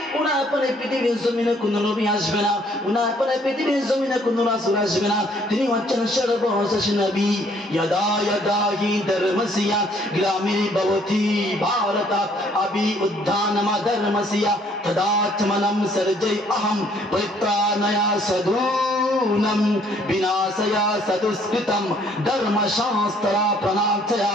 ওনার পরে পৃথিবীর জমিনে কোনো নবী আসবে না, ওনার পরে পৃথিবীর জমিনে কোনো রাসূল আসবে না, তিনি হচ্ছেন সর্বশেষ নবী। यदा यदा हि धर्मस्य ग्रामीर्भवति भारत अभि उद्धानम धर्मस्य तदात्मनं सर्जय अहं परित्राणया साधूनां नूनम विनाशया सदुष्कृतम धर्म शास्त्रा प्रणार्थया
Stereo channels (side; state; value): both; normal; correlation 0.63